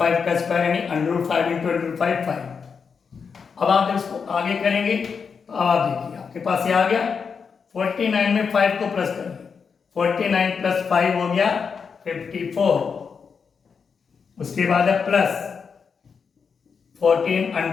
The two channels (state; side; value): quieter; right; 5.9 dB